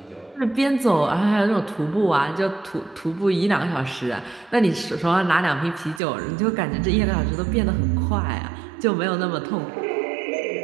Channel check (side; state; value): left; drops out; at 6.0 s